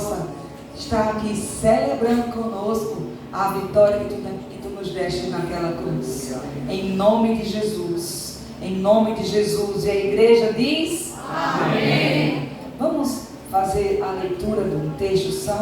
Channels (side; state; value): both; identical; correlation 1.00